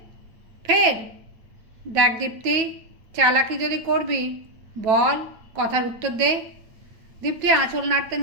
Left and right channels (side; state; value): left; late; 9.2 ms